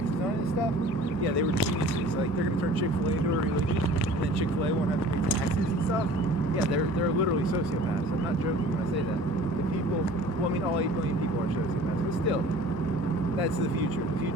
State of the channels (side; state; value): left; late; 1.6 ms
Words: on it and stuff. Yeah, they were geniuses. Like they're gonna turn Chick-fil-A into a religion, and then Chick-fil-A won't have to pay taxes and stuff. Yeah, they're literally sociopaths. I'm not joking when I say that. The people, well, I mean, all 8 billion people are sociopaths, but still, that's the future. The